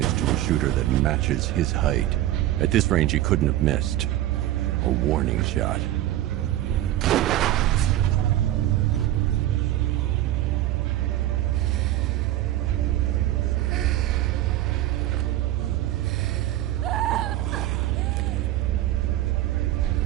to a shooter that matches his height. At this range, he couldn't have missed. A warning shot.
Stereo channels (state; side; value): quieter; left; 14.0 dB